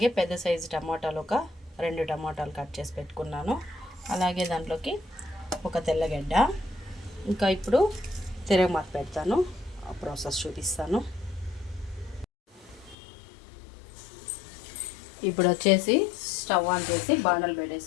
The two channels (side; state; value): right; drops out; at 13.0 s